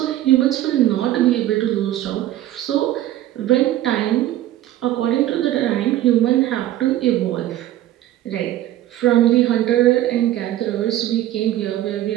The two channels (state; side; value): quieter; left; 13.7 dB